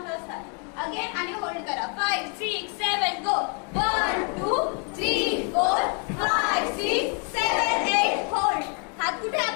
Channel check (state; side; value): quieter; right; 39.1 dB